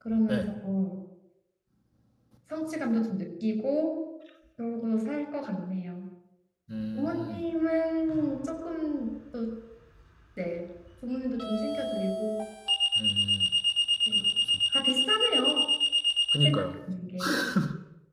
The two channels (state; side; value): identical; both; correlation 1.00